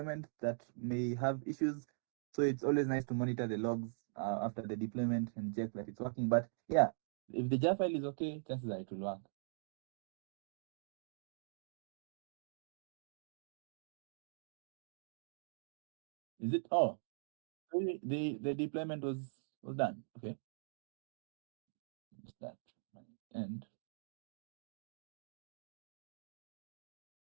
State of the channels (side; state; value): left; silent; digital silence